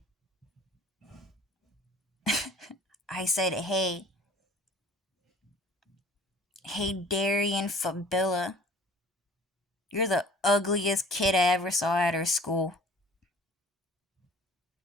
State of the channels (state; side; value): normal; both; correlation 0.50